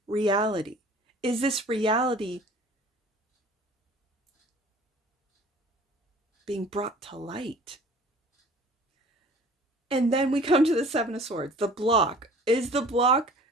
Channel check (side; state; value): both; normal; correlation 0.48